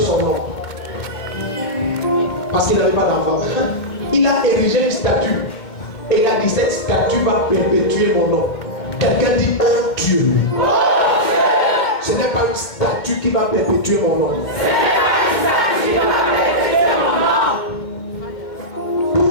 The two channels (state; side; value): late; right; 2.2 ms